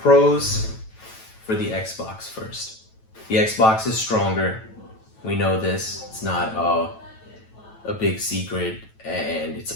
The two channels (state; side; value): late; right; 9.1 ms